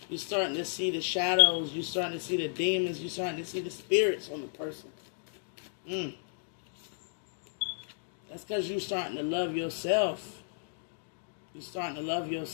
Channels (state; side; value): silent; right; digital silence